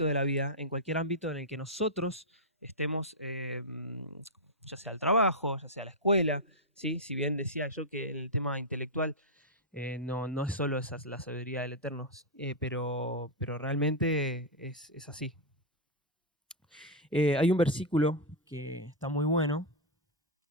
de la vida, en cualquier ámbito en el que nosotros estemos, ya sea el trabajo, ya sea la escuela, ¿sí? Si bien decía yo que en el tema intelectual no es solo la sabiduría del Eterno, pero realmente es así. Hay un versículo que está muy bueno,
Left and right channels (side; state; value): both; normal; correlation -0.04